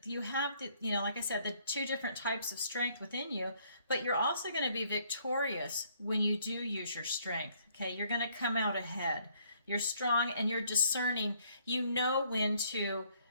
you have the, like I said, the two different types of strength within you, but you're also going to be victorious when you do use your strength. Okay. You're going to come out ahead. You're strong and you're discerning. You know when to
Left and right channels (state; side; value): inverted; both; correlation -0.65